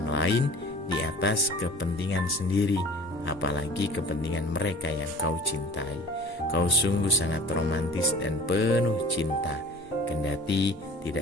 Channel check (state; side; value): normal; both; correlation 0.43